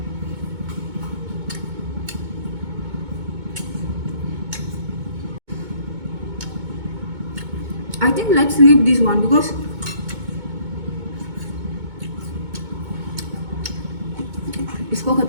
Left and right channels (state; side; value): late; left; 2.2 ms